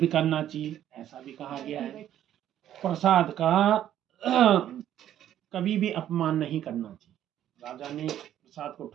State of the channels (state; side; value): quieter; left; 11.3 dB